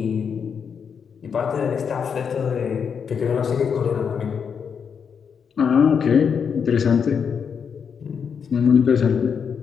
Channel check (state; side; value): quieter; right; 6.7 dB